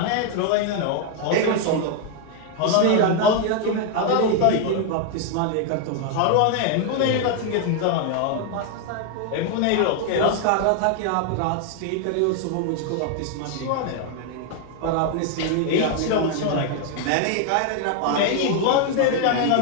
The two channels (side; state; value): both; different; correlation 0.00